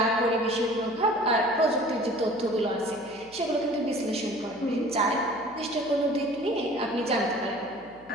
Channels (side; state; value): left; noise; hum, 27 dB below the sound